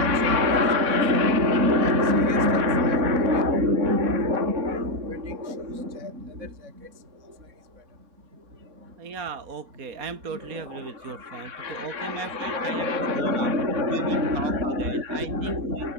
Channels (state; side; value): late; left; 3.6 ms